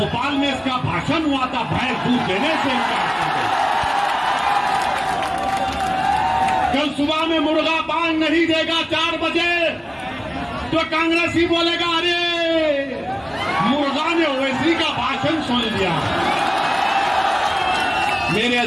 में इसका भाषण हुआ था, भैंस दूध देने से इनकार कर दे। कल सुबह में मुर्गा बांग नहीं देगा 4 बजे तो कांग्रेसी बोलेगा अरे मुर्गा ने ओवैसी का भाषण सुन लिया। मेरे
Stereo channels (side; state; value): both; identical; correlation 1.00